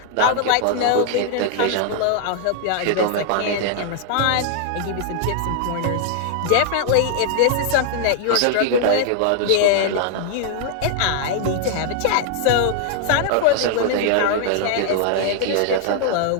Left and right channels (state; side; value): different; both; correlation -0.01